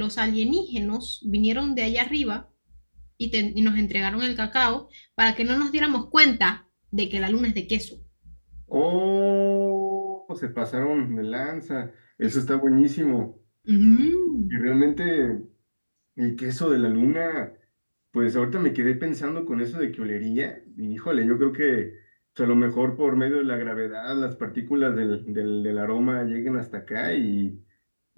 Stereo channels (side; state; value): both; inverted; correlation -1.00